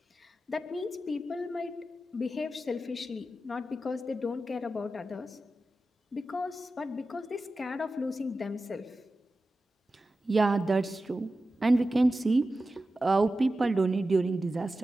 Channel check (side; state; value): both; normal; correlation 0.93